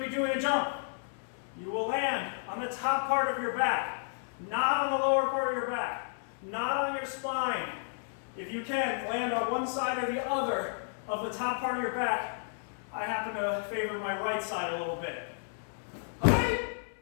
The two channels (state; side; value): silent; right; 56 dB below the other